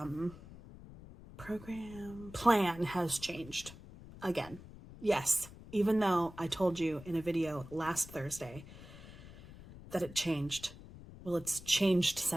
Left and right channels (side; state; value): left; noise; rumble, 17 dB below the sound